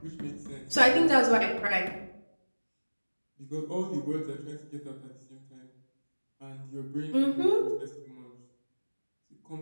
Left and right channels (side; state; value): both; inverted; correlation -1.00